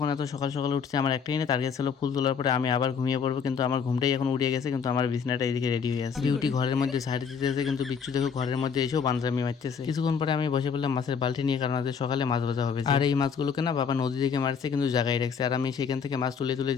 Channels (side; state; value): right; quieter; 6.5 dB